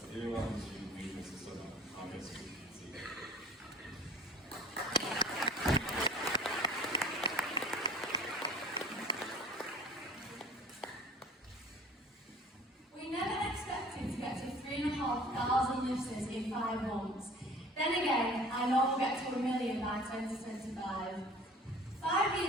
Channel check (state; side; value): normal; both; correlation 0.46